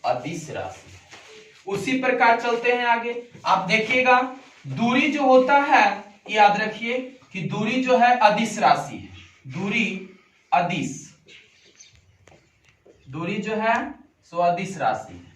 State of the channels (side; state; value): both; identical; correlation 1.00